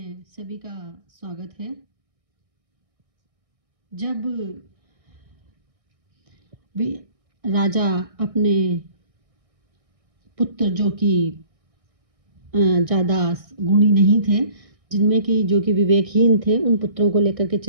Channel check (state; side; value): late; left; 1.6 ms